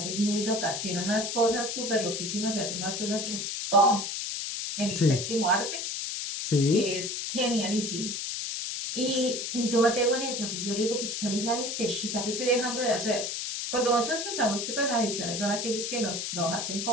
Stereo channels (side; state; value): left; noise; hiss, 3 dB below the sound